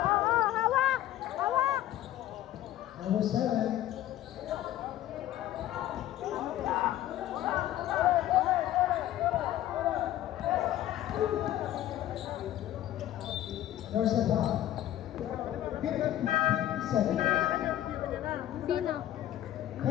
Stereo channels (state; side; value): quieter; right; 13.1 dB